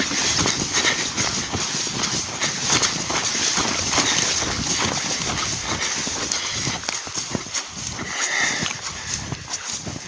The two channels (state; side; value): identical; both; correlation 1.00